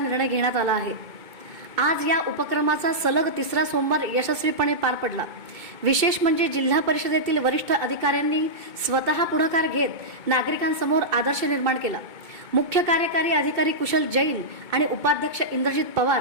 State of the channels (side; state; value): left; late; 2.2 ms